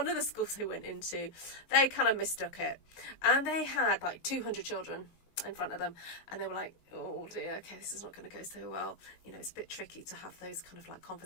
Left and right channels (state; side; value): late; right; 19 ms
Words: of the schools they went into, they kind of mistook it. And they had like 200 children in front of them, and they were like, oh dear, okay, this is not going to go so well. You know, it's a bit tricky to have those kind of like